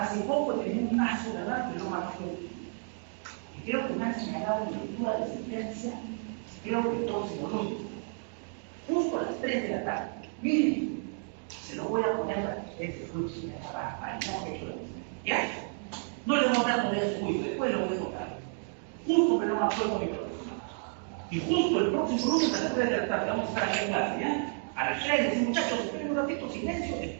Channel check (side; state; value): left; silent; 57 dB below the other